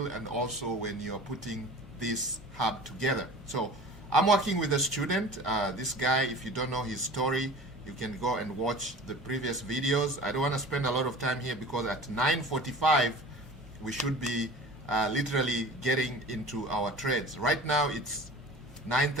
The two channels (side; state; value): both; normal; correlation 0.40